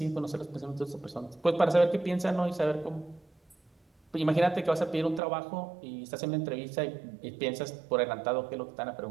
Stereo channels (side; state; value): left; drops out; at 5.2 s